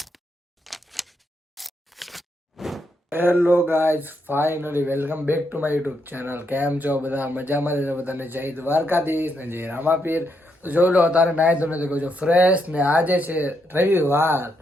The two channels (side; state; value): both; normal; correlation 0.79